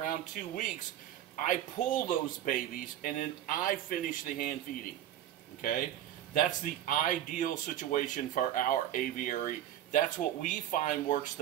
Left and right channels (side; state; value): left; quieter; 11.8 dB